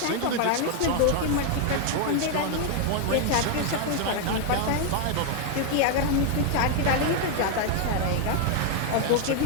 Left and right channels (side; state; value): both; different; correlation 0.01